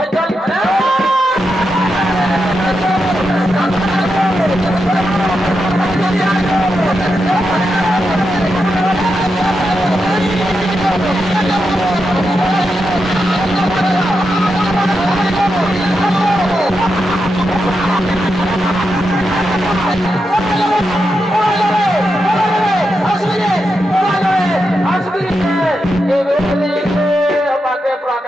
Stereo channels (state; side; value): normal; both; correlation 0.86